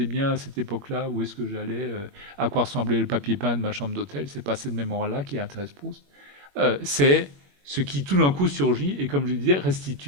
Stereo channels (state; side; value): late; left; 21 ms